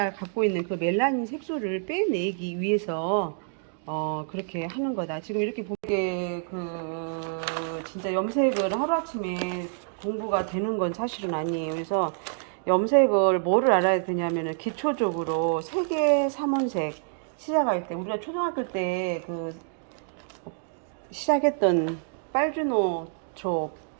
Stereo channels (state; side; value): silent; left; digital silence